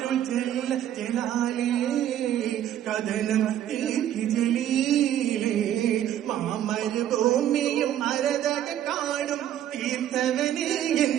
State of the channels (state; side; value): quieter; left; 11.2 dB